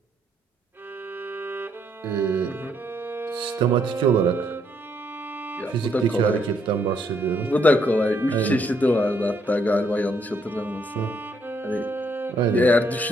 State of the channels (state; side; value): normal; both; correlation 0.72